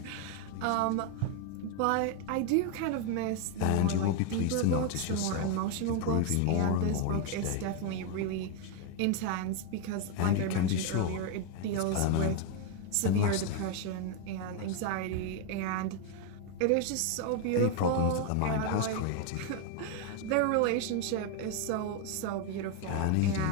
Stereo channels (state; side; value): different; both; correlation 0.01